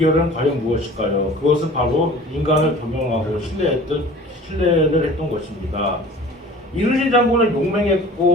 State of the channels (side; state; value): both; normal; correlation 0.44